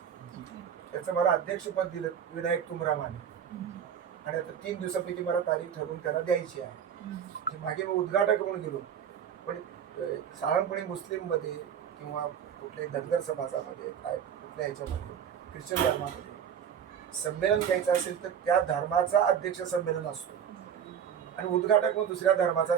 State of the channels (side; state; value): left; quieter; 8.4 dB